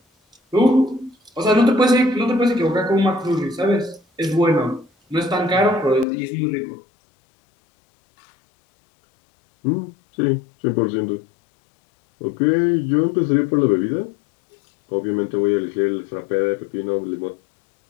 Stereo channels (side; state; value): right; drops out; at 6.1 s